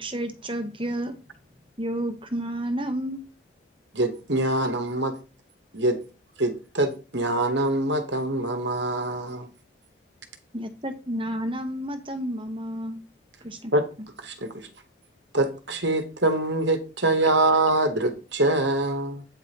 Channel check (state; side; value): normal; both; correlation 0.00